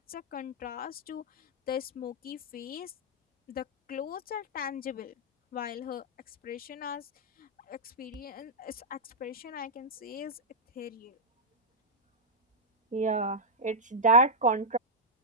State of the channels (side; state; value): both; normal; correlation -0.08